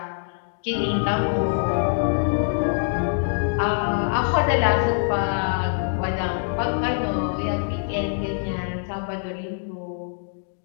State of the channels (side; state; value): right; silent; digital silence